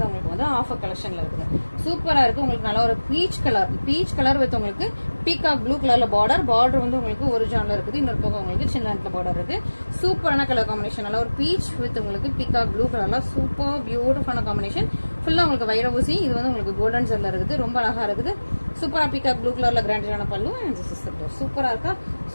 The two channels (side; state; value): both; inverted; correlation -1.00